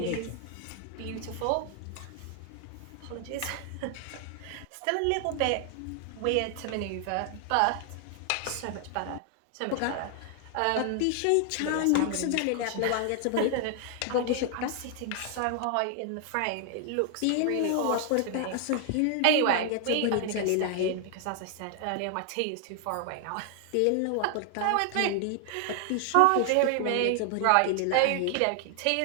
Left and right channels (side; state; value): both; different; correlation 0.00